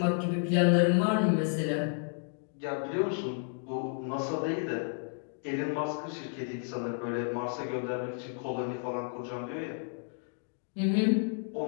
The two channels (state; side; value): silent; right; 57 dB below the other